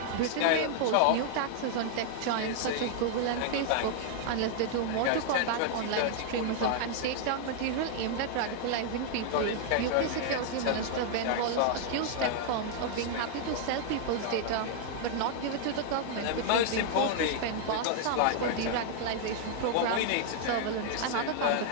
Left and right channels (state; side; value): different; both; correlation -0.01